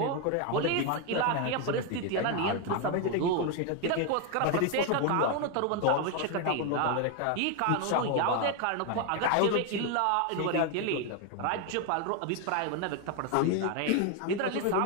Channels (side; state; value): both; different; correlation 0.01